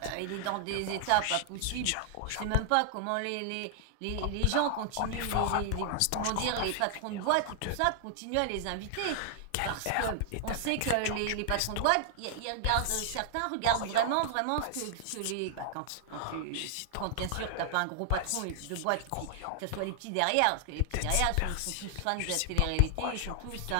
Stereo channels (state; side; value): different; both; correlation -0.01